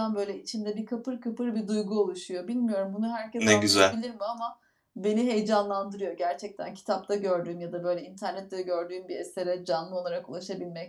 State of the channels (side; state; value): both; identical; correlation 1.00